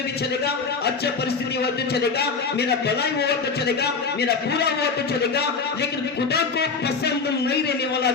भी चलेगा, अच्छा परिस्थिति हो तो चलेगा, मेरा भलाई हुआ तो चलेगा, मेरा पूरा हुआ तो चलेगा, लेकिन खुदा को पसंद नहीं रहने वाला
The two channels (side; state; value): right; quieter; 4.9 dB